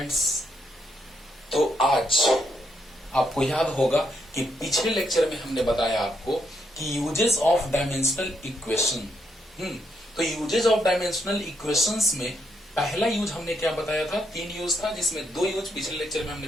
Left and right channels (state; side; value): normal; both; correlation 0.77